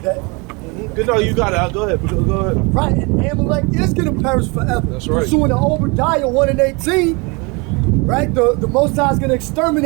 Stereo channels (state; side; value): quieter; left; 28.9 dB